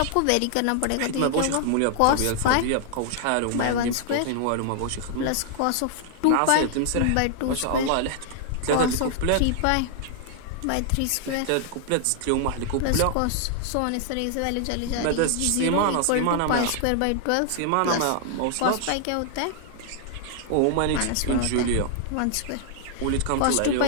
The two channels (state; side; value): different; both; correlation 0.00